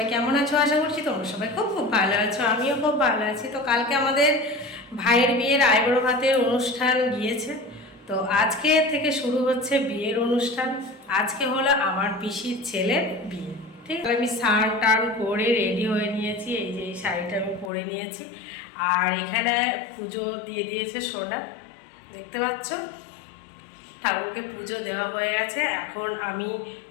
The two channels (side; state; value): right; drops out; at 17.7 s